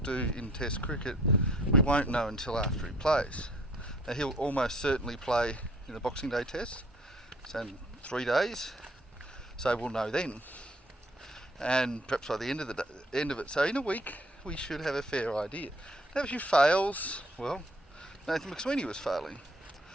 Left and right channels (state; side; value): normal; both; correlation 0.59